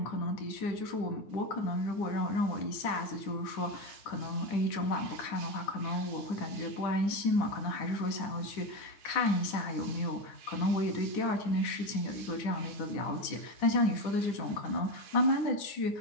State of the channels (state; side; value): late; right; 10 ms